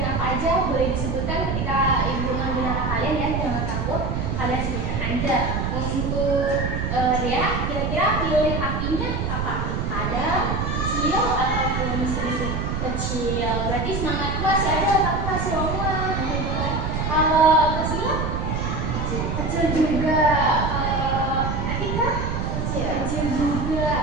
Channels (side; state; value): right; noise; rumble, 1 dB below the sound